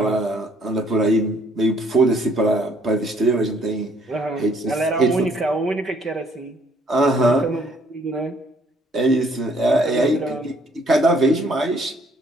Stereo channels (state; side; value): normal; both; correlation 0.64